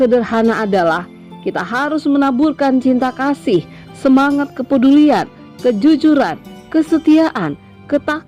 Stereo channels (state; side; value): identical; both; correlation 1.00